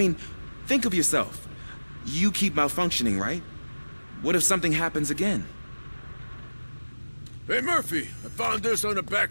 think of yourself. You keep malfunctioning, right? What if something happens again? Hey, Murphy, I found this on the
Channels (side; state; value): both; inverted; correlation -1.00